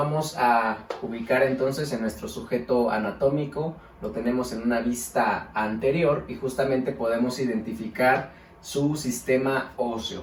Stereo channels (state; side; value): identical; both; correlation 1.00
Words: a ubicar entonces en nuestro sujeto anatómico. Lo tenemos en una vista anterior y justamente podemos identificar su sistema óseo.